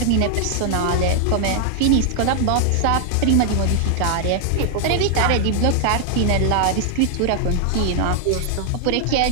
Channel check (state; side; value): different; both; correlation 0.00